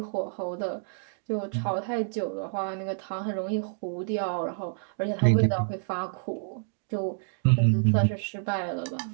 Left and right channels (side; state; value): left; silent; digital silence